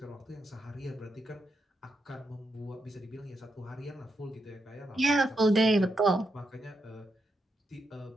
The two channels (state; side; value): normal; both; correlation 0.83